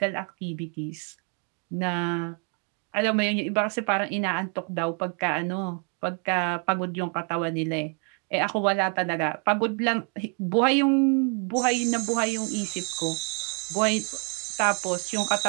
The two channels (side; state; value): left; quieter; 36.6 dB